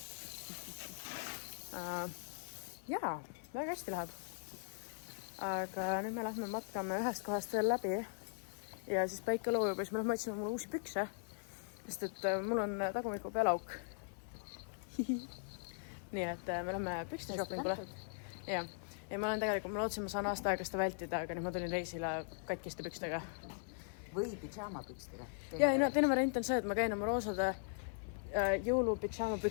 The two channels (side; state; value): right; silent; 51 dB below the other